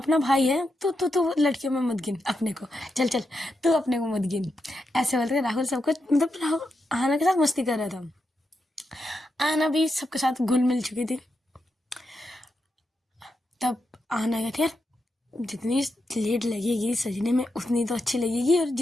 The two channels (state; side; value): normal; both; correlation 0.85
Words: भाई है, तो लड़कियों में मत गिन अपने को, चल चल तू अपने को मत गिन, ऐसे बोलते राहुल सबको, मतलब राहुल आना के साथ मस्ती कर रहा था। आना भी सबके साथ घुल मिल चुकी थी। तब आना कहती यार जितनी लेट लगेगी सजने में उतनी तो अच्छी लगेगी, और